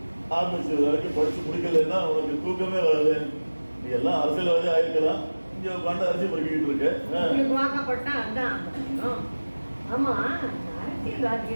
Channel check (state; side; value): inverted; both; correlation -1.00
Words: ஆரம்பிச்சு வரைக்கும் படிச்சு முடிக்கலன்னா உனக்கு தூக்கமே வராது. நீ எல்லாம் அரசியல்வாதி ஆயிருக்கலாம், இங்க உட்காந்து அரசியல் படிக்கிட்டு இருக்க. வாக்கப்பட்டா அதான். ஆமா,